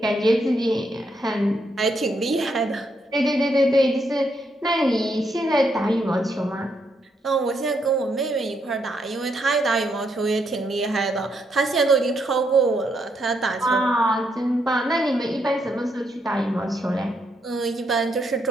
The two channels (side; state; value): both; normal; correlation 0.77